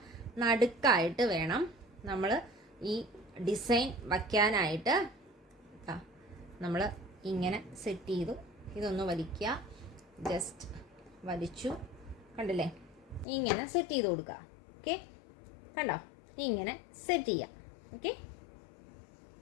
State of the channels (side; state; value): right; drops out; at 13.2 s